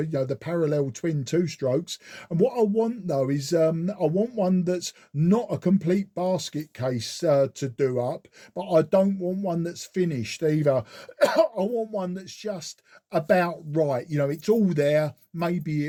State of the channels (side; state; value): both; identical; correlation 1.00